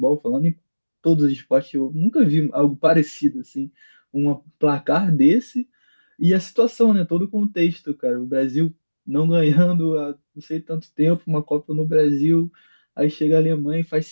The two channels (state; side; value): inverted; both; correlation -1.00